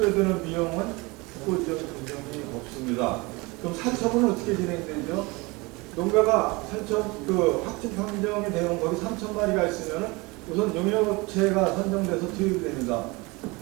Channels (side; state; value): left; quieter; 25.1 dB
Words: 비용은 국고지원 규정이 없습니다. 그럼 살처분은 어떻게 진행되죠? 농가가 확진 판정이 되는 거기 3,000마리가 있으면 우선 용역업체가 선정돼서 투입이 됩니다.